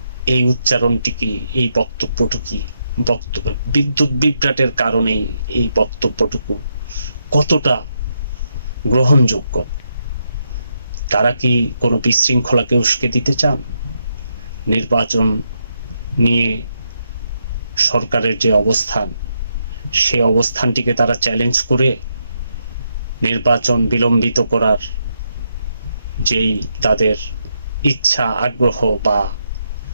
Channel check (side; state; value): both; inverted; correlation -0.81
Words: এই উচ্চারণটি কি, এই বক্তব্যটুকু বিদ্যুৎ বিভ্রাটের কারণেই এই বক্তব্যটুকু কতটা গ্রহণযোগ্য? তারা কি কোনো বিশৃঙ্খলাকে উস্কে দিতে চান? নির্বাচন নিয়ে সরকারের যে অবস্থান, সে অবস্থানটিকে তারা চ্যালেঞ্জ করে নির্বাচন বিলম্বিত করার যেই তাদের ইচ্ছা, আগ্রহ বা